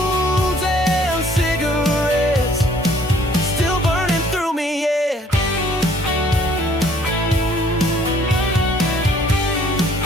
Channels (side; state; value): both; normal; correlation 0.59